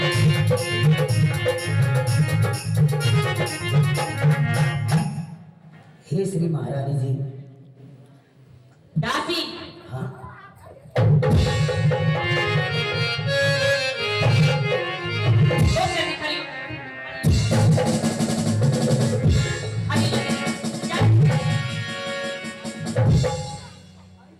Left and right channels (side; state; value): both; identical; correlation 1.00